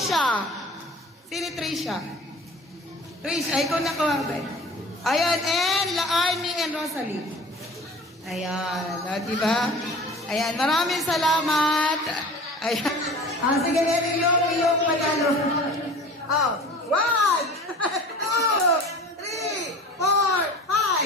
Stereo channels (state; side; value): normal; both; correlation 0.41